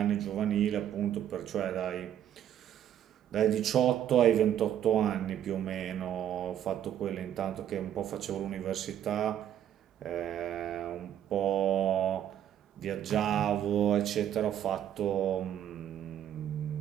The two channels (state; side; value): quieter; left; 10.5 dB